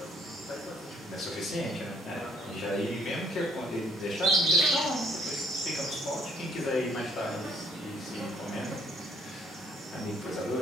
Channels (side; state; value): both; normal; correlation 0.64